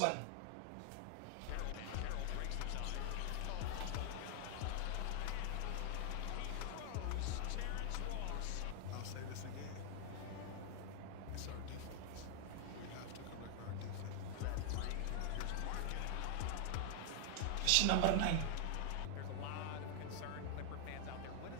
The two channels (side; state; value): both; different; correlation 0.00